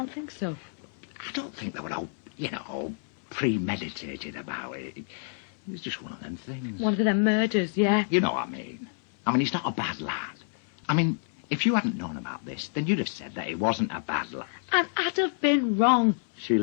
think so? I don't think they were all, all premeditated about it. It was just one of them things. One of them murders, yeah. You know what I mean. I mean, he's not a bad lad. I mean, if you hadn't known about this, then you'd have said that he wasn't a bad lad. And I'd have been wrong. She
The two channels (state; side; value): silent; right; 59 dB below the other